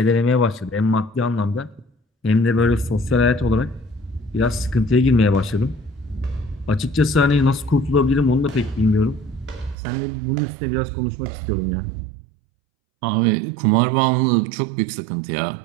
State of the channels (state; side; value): drops out; left; at 9.8 s